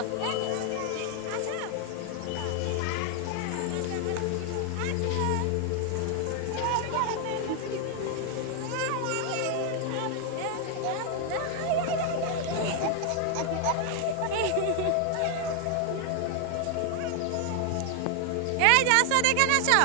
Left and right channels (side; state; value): both; different; correlation 0.00